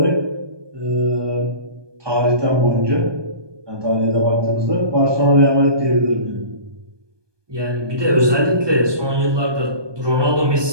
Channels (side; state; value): left; late; 1.2 ms